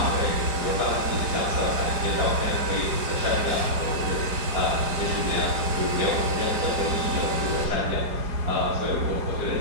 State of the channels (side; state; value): left; late; 4.8 ms